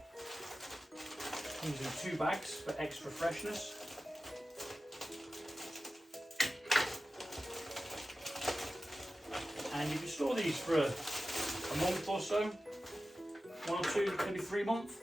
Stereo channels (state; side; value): normal; both; correlation 0.94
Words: Using 2 bags for extra freshness. And you can store these for a month or so, 1 or 2, maybe 3 months.